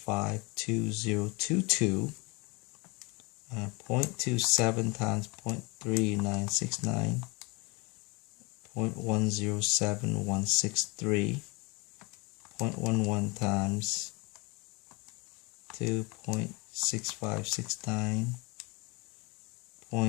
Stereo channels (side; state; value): right; quieter; 27.4 dB